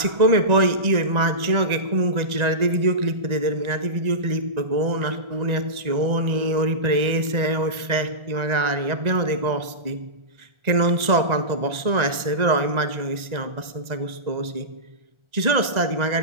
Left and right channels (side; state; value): left; late; 1.4 ms